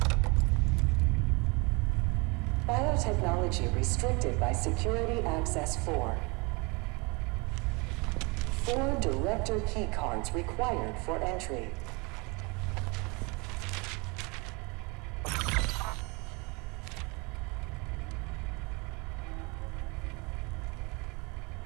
Biotechnology restricted by Security Access 4. 4 director keycards required for entry.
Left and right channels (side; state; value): left; quieter; 28.7 dB